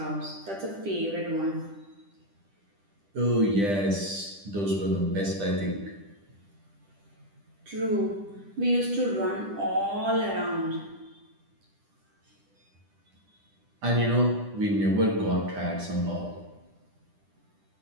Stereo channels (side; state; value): left; late; 10 ms